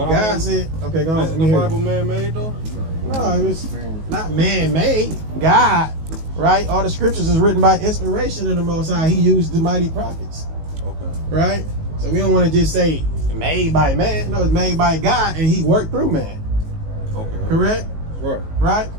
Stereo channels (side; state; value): left; late; 19 ms